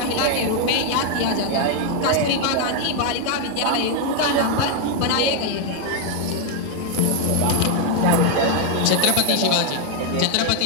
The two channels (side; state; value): both; different; correlation 0.00